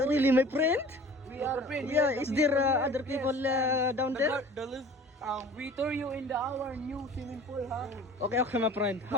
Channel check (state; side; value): normal; both; correlation 0.44